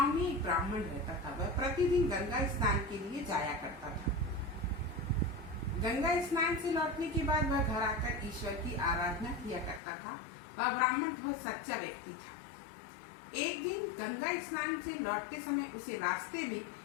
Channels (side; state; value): right; drops out; at 9.8 s